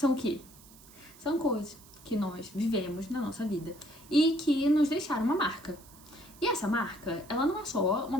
o quê? São coisas que nós vivemos na nossa vida e que nos deixaram uma marca. E essa marca, ela não é só uma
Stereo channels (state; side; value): noise; right; hiss, 23 dB below the sound